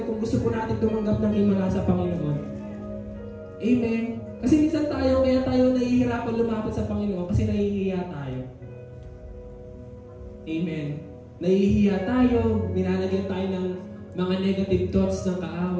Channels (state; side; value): identical; both; correlation 1.00